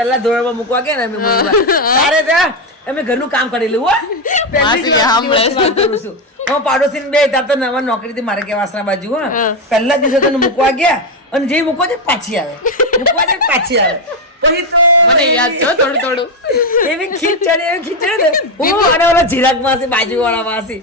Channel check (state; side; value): normal; both; correlation 0.09